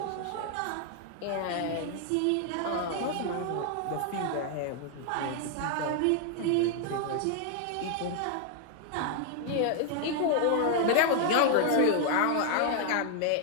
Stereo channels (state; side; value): different; both; correlation 0.00